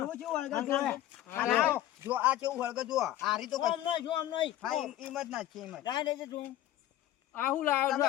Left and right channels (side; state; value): right; quieter; 13.4 dB